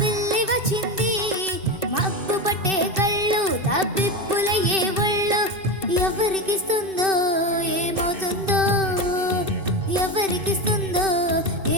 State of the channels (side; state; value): left; late; 2.6 ms